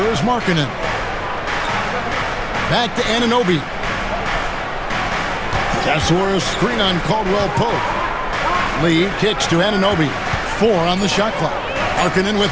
is Markkanen. Back to Anunoby. Tesorius screen on Caldwell Pope. Lee kicks to Anunoby. 4 on the shot clock. Markkanen with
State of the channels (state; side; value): identical; both; correlation 1.00